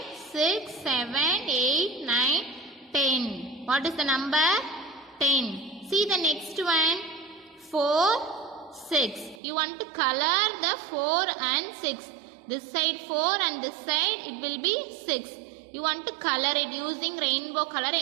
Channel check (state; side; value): drops out; left; at 9.4 s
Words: 6, 7, 8, 9, 10. What is the number? 10. See the next one. 4, 6. You want to color the 4 and 6. This side 4 and this side it will be 6. You want to color it using rainbow color.